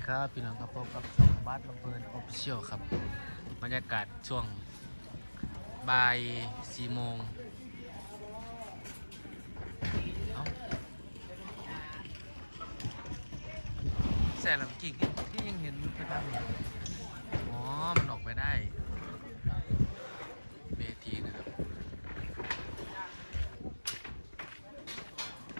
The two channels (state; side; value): inverted; both; correlation -1.00